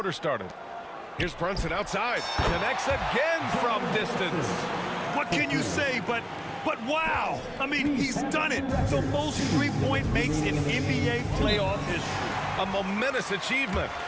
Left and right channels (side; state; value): both; identical; correlation 1.00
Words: started. Here's Brunson outside. Connects again from distance. What can you say but wow? I mean, he's done it. The most three-point makes in NBA playoff history. A momentous achievement.